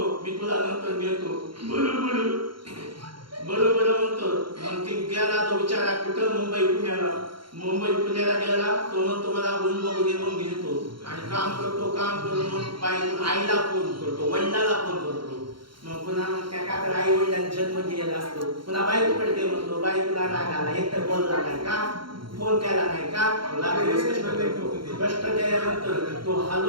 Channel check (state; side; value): late; left; 0.73 ms